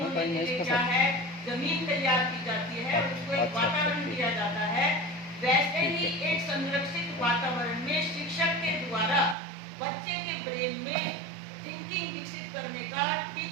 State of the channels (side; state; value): left; drops out; at 9.3 s